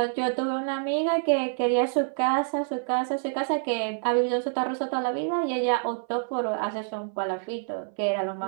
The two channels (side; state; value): left; silent; 59 dB below the other